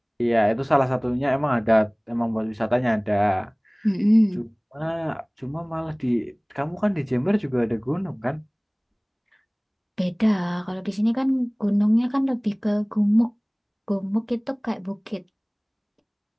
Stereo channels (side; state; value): both; identical; correlation 1.00